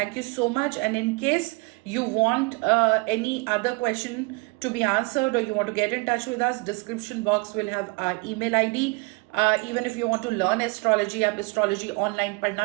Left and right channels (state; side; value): quieter; left; 28.1 dB